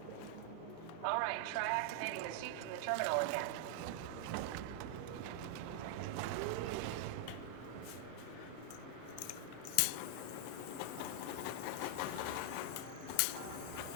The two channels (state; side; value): different; both; correlation 0.00